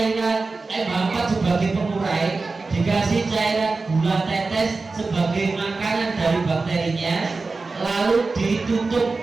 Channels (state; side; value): quieter; left; 3.9 dB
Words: MH4 sebagai pengurai, dikasih cairan gula tetes sebagai makanan dari bakterinya, lalu